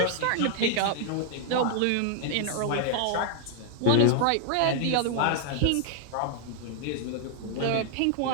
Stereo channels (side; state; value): both; different; correlation 0.00